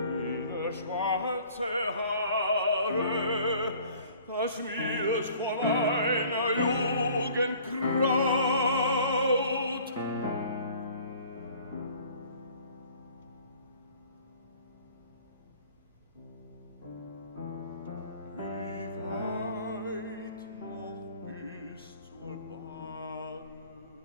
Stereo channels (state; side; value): inverted; both; correlation -0.52